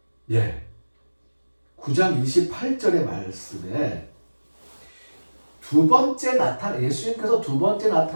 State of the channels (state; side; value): inverted; both; correlation -1.00